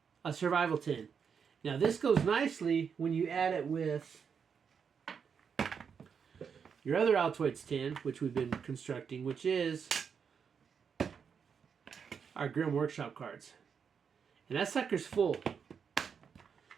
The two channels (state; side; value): quieter; left; 6.6 dB